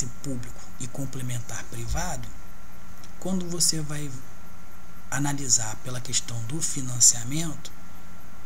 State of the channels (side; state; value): both; identical; correlation 1.00